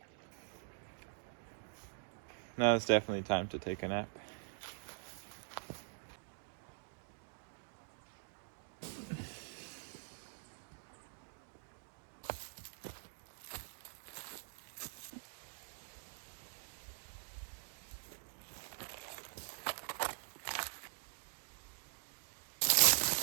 Now it's definitely time to take a nap.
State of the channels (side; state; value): left; silent; digital silence